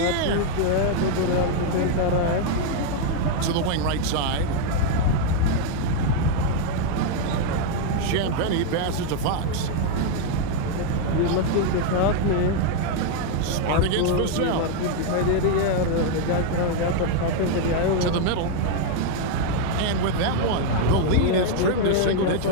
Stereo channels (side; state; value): both; different; correlation 0.00